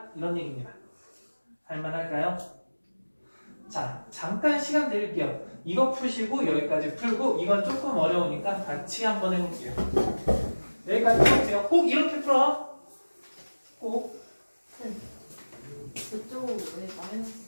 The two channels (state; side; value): inverted; both; correlation -1.00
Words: 이런 얘기입니다. 할만할까요? 자, 잠깐 시간 드릴게요. 이거 푸시고 여기까지 풀고 이건 조금 어려우니까 같이 한번 해볼게요. 여기까지 풀어보세요. 꼭 이렇게 풀어. 꼭. 그쪽은 왜 마이너스